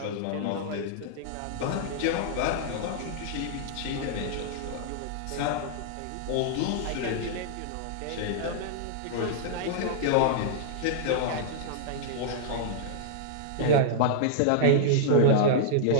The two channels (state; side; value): different; both; correlation -0.02